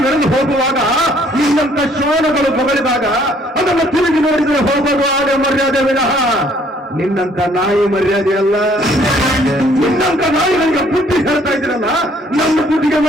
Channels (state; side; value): normal; both; correlation 0.62